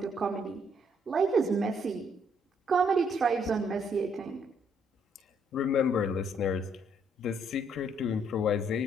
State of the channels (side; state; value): both; normal; correlation 0.69